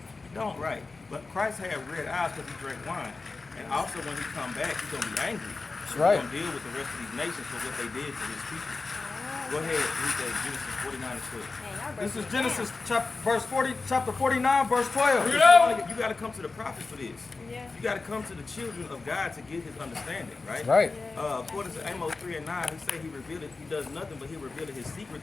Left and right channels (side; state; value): right; quieter; 3.9 dB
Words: He don't, right. But Christ had red eyes because he drank wine. And also when he come back, he's going to be angry. That's He's right. going to deal with the rest of these nations for what they did to his people. Oh. Go ahead, read that Genesis 49 and 12. Man, y'all This breaking is it Genesis down. chapter 49, verse 12. You got to come to the prophets for this. Yeah. You got to come to the children of God to get his understanding, right? Right. According to Amos 3 and 9, he said he does nothing but he revealed his